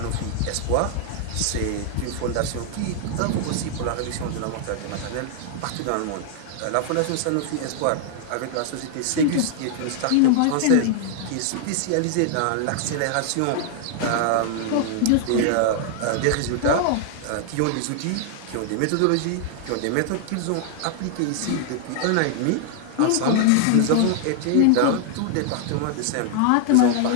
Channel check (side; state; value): both; different; correlation 0.00